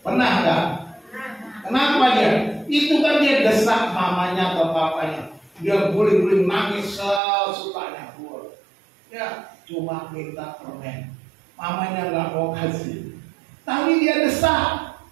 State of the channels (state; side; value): drops out; left; at 7.2 s